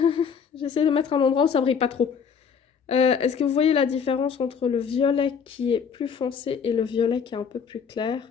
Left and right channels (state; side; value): quieter; right; 6.6 dB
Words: J'essaie de mettre un endroit où ça brille pas trop. Est-ce que vous voyez la différence entre le violet qui est plus foncé et le violet qui est un peu plus